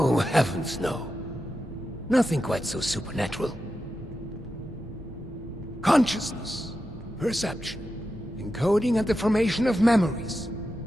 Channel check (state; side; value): normal; both; correlation 0.89